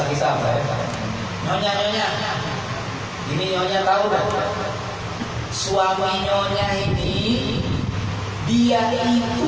kita apa ya? Nyonya, ini nyonya tahu dah, suami nyonya ini dia itu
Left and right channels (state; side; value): identical; both; correlation 1.00